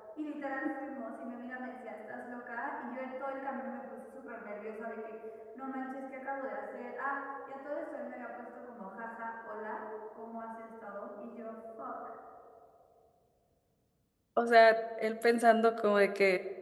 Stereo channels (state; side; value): identical; both; correlation 1.00